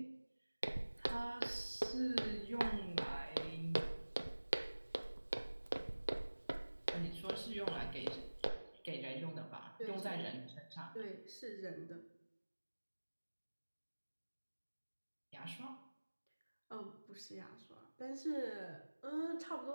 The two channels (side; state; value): both; inverted; correlation -1.00